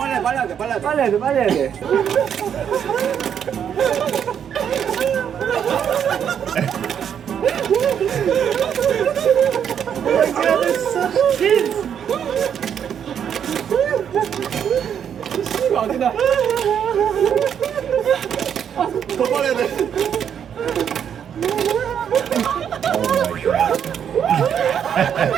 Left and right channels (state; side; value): quieter; left; 8.5 dB